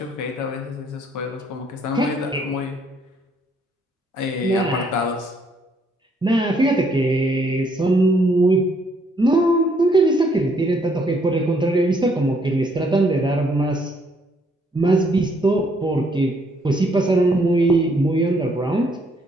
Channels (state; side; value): normal; both; correlation 0.69